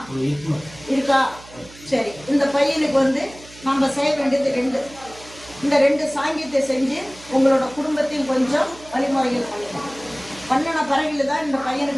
இருக்கா? சரி, இந்த பையனுக்கு நம்ம செய்ய வேண்டியது 2. இந்த 2 சாங்கியத்தை செஞ்சு உங்களோட குடும்பத்தையும் கொஞ்சம் வழிமுறைகள் பண்ணிக்கலாம். பண்ணின பிறகு தான் இந்த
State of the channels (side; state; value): right; noise; hum, 20 dB below the sound